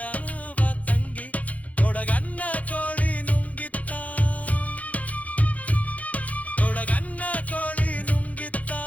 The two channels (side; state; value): right; late; 0.070 ms